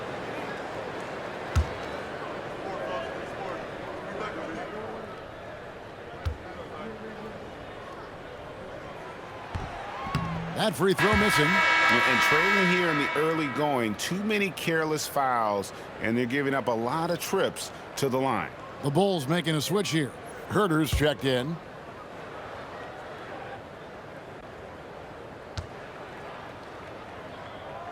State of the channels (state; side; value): identical; both; correlation 1.00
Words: That free throw missing. And trailing here in the early going, too many careless fouls, and they're giving up a lot of trips to the line. The Bulls making a switch here. Herter's checked in.